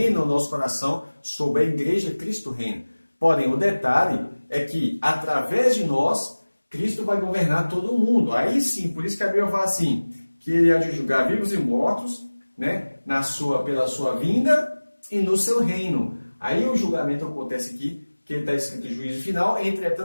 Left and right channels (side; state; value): both; inverted; correlation -1.00